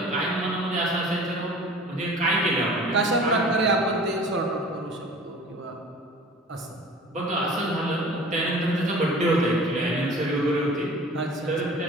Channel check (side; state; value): both; normal; correlation 0.44